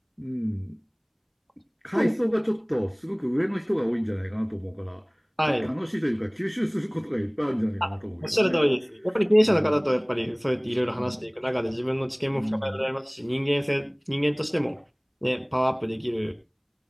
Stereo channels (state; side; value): identical; both; correlation 1.00